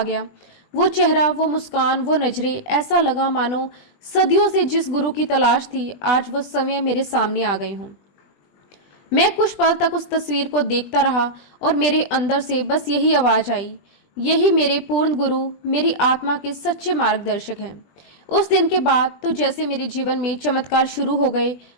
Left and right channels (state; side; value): late; right; 20 ms